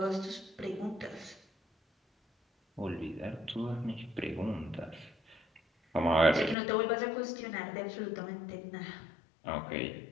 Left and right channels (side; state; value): right; drops out; at 6.6 s